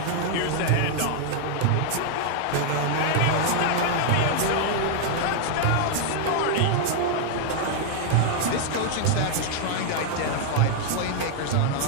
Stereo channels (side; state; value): both; different; correlation 0.00